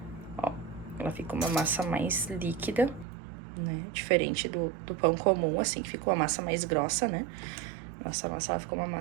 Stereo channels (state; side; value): drops out; left; at 3.1 s